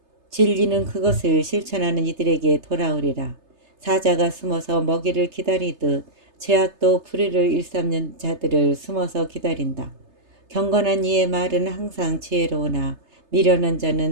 진리는 그것을 실천하는 이들에게 돌아오리라. 사자가 숨어서 먹이를 기다리듯 죄악도 불의를 일삼는 자들을 숨어서 기다린다. 경건한 이의 말은 항상 지혜로우나 미련한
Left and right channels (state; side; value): late; left; 3.3 ms